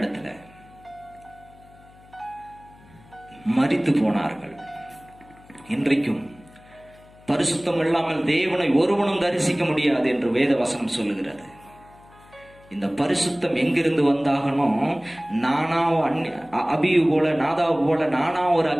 மரித்து போனார்கள். இன்றைக்கும் பரிசுத்தம் இல்லாமல் தேவனை ஒருவனும் தரிசிக்க முடியாது என்று வேத வசனம் சொல்லுகிறது. இந்த பரிசுத்தம் எங்கிருந்து வந்தாகணும்? நானா அபியு போல நாதாவு போல நானா ஒரு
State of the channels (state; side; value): noise; left; hum, 25 dB below the sound